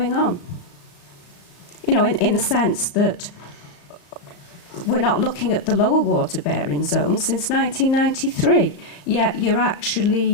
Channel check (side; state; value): right; late; 34 ms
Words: on. In the sense that we're not looking at the lower water bearing zone since 1993, yet you're